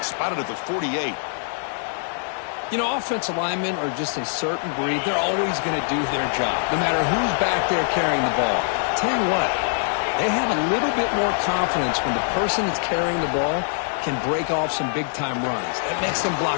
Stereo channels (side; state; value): right; silent; digital silence